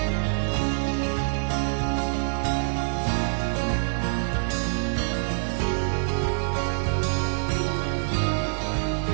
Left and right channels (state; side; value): silent; left; digital silence